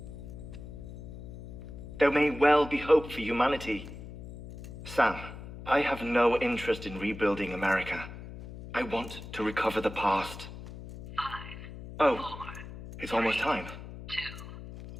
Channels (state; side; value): noise; left; hum, 12 dB below the sound